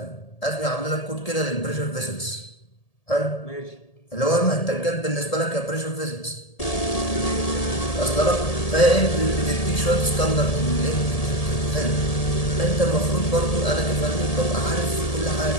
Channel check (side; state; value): right; late; 1.8 ms